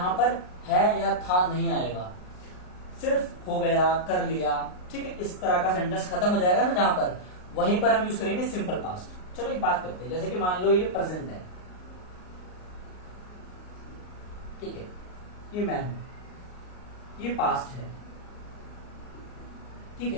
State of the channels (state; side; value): late; right; 38 ms